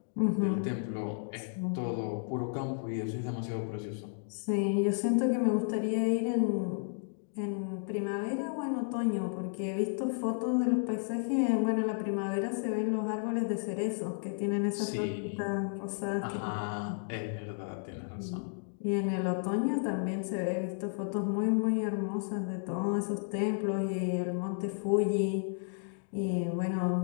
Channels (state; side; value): silent; right; digital silence